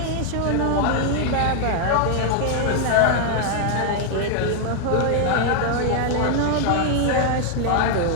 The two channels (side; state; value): both; different; correlation 0.00